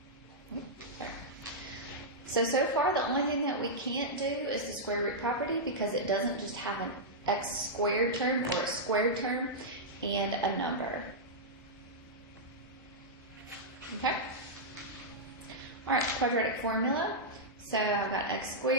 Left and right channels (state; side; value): normal; both; correlation -0.09